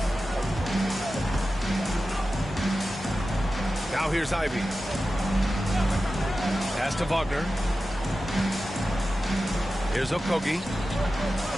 Now here's Ivy. Pass to Wagner. Here's Okogie.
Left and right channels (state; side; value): normal; both; correlation 0.93